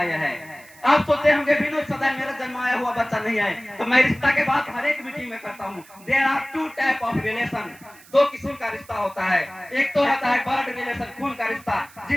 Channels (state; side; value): noise; right; hiss, 24 dB below the sound